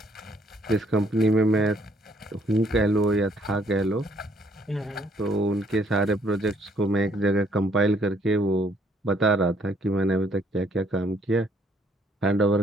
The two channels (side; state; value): both; normal; correlation 0.66